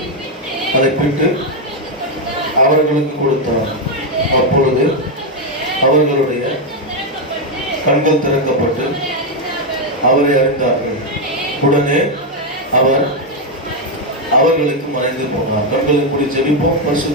அதை பிட்டு அவர்களுக்கு கொடுத்தார். அப்பொழுது அவர்களுடைய கண்கள் திறக்கப்பட்டு அவரை அறிந்தார்கள். உடனே அவர் அவர்களுக்கு மறைந்து போனார். கண்களை மூடி ஜெபிப்போம்.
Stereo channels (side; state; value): both; normal; correlation 0.03